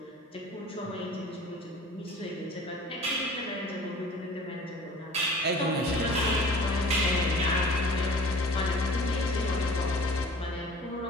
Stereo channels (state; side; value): normal; both; correlation 0.45